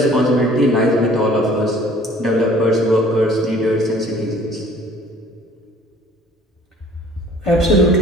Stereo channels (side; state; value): both; normal; correlation 0.53